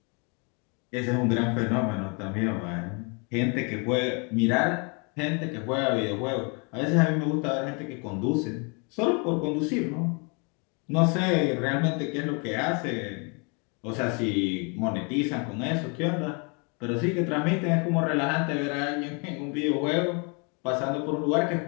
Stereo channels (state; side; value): quieter; right; 34.0 dB